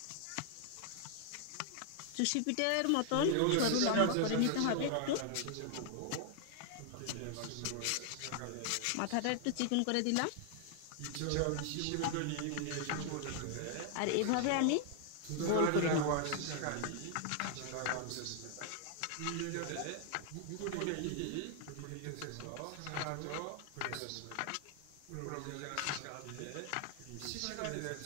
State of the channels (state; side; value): different; both; correlation 0.00